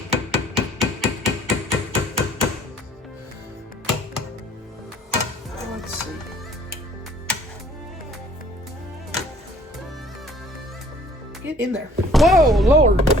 Let's see. Get in there. Whoa, Lord.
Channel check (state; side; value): normal; both; correlation 0.56